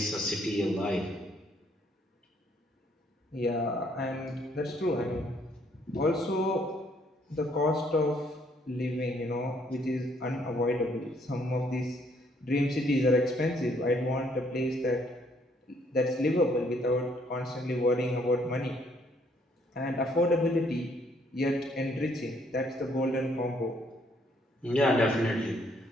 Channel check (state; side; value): normal; both; correlation 0.67